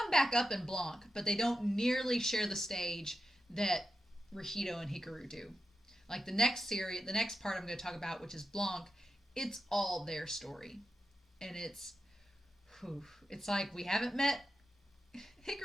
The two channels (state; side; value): normal; both; correlation 0.89